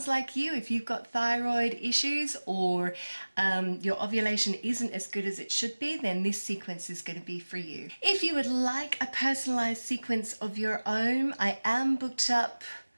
like you, if you've got thyroid issues or your ovulation isn't as good as it should be, then this sequence is going to be for you. If you would like a personalized sequence of your own, I am booked up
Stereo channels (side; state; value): both; inverted; correlation -1.00